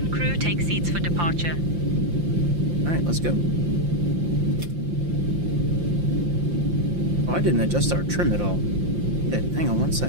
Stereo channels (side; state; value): left; late; 5.8 ms